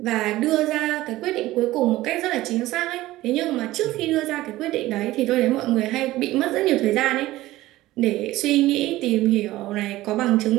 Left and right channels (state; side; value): quieter; left; 16.8 dB